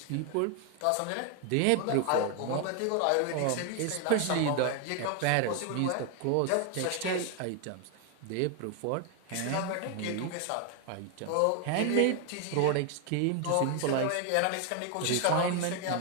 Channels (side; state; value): both; different; correlation 0.00